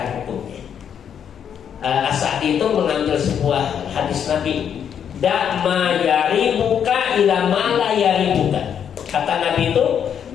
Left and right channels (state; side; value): quieter; right; 8.4 dB